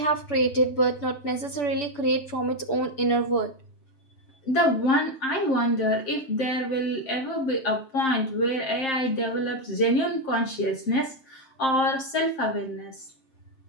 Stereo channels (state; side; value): late; right; 7.6 ms